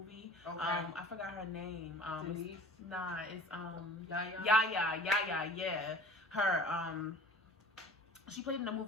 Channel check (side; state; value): both; normal; correlation 0.43